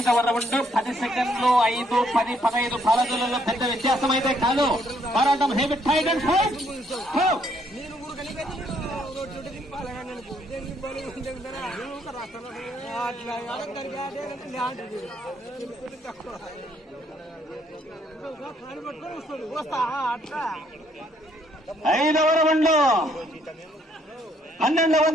రౌండ్ 10 సెకండ్లు 5, 10, 15 పాలకులలో పెద్ద వ్యత్యాసం అయితే కాదు. పోరాటం హెవీ టైట్ అండ్ ఫైట్. ఐదవ రౌండ్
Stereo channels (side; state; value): both; normal; correlation 0.69